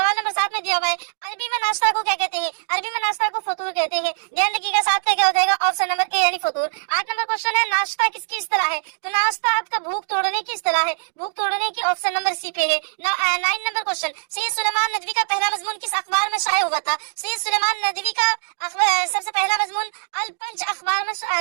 नंबर 7 में दिया हुआ है अरबी में नाश्ता को क्या कहते हैं। अरबी में नाश्ता को फतूर कहते हैं, ध्यान रखिएगा। 7 पे क्या हो जाएगा, ऑप्शन नंबर ए यानी फतूर। 8 नंबर क्वेश्चन है नाश्ता किसकी इस्तिलाह है। तो नाश्ता आपका भूख तोड़ने की इस्तिलाह है, भूख तोड़ने की ऑप्शन नंबर सी पे है। 9 नंबर क्वेश्चन सैयद सुलेमान नदवी का पहला मजमून किस अखबार में शाये हुआ था। सैयद सुलेमान नदवी का सबसे पहला मजमून अल पंच अखबार में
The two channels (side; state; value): left; silent; digital silence